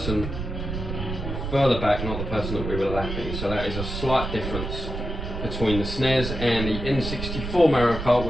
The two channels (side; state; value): right; noise; rumble, 5 dB below the sound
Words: further back, not the person that we were lapping. So that is a slight difference between the SNES and the N64 Mario Kart,